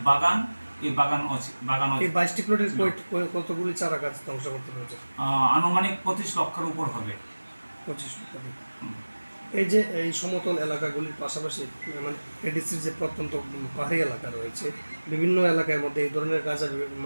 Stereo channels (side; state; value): both; inverted; correlation -1.00